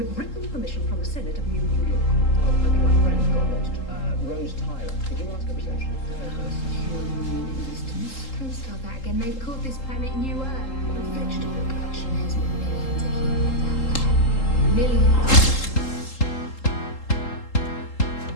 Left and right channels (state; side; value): late; right; 3.8 ms